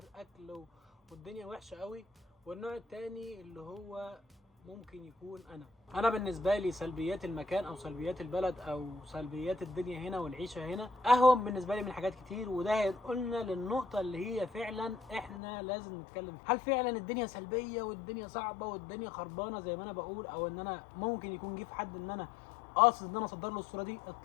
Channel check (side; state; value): right; drops out; at 15.4 s